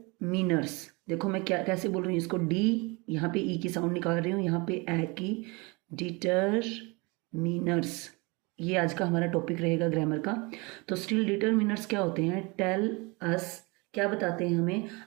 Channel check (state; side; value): quieter; left; 27.5 dB